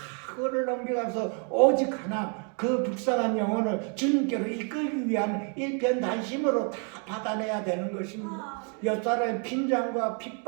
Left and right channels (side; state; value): left; quieter; 39.3 dB